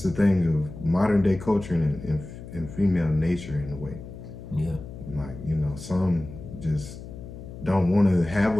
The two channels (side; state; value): left; noise; hum, 13 dB below the sound